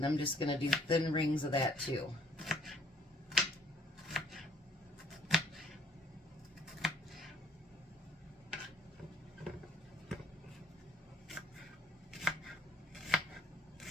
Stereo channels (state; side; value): normal; both; correlation 0.60